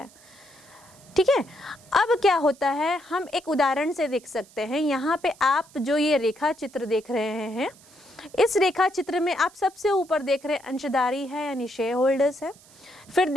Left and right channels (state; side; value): noise; right; hiss, 25 dB below the sound